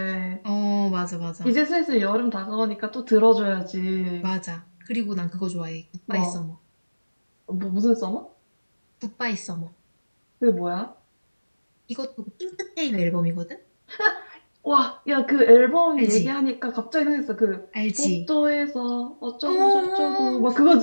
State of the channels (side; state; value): both; inverted; correlation -1.00